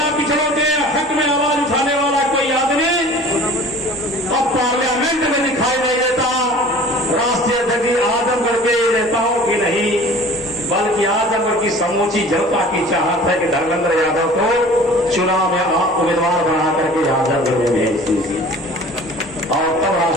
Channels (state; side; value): normal; both; correlation 0.45